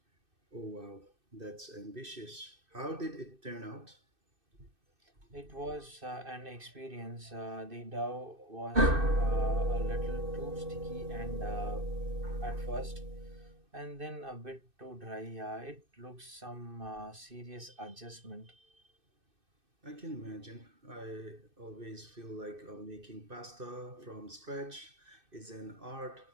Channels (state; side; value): late; left; 2.6 ms